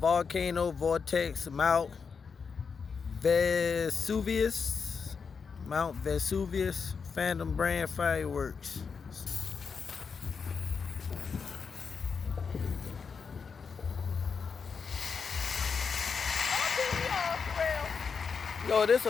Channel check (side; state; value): right; quieter; 5.7 dB